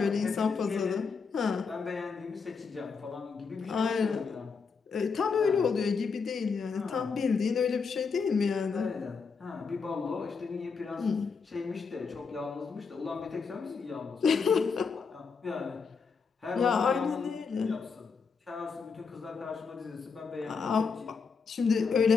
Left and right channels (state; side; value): quieter; right; 5.3 dB